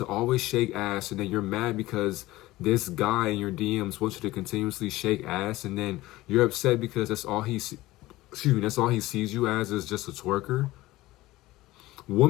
always shake ass, and then you're mad because this guy in your DMs wants you to continuously shake ass, and then you're upset because that's all he sees you as, is just a twerker.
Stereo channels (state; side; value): quieter; right; 18.0 dB